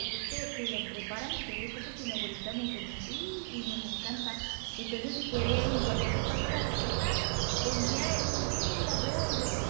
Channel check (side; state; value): left; silent; digital silence